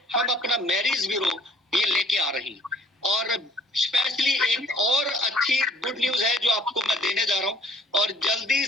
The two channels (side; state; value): both; normal; correlation 0.54